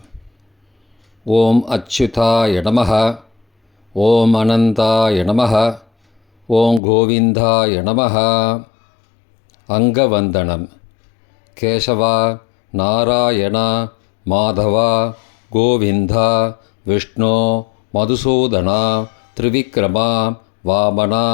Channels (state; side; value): drops out; right; at 6.8 s